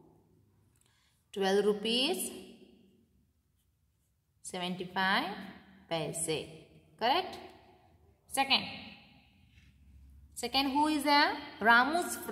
12 rupees 75 paise. Correct? Second, who is there? Ramu's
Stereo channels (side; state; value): both; identical; correlation 1.00